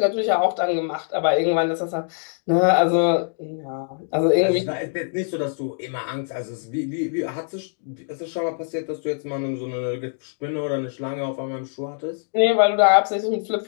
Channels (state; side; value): silent; right; digital silence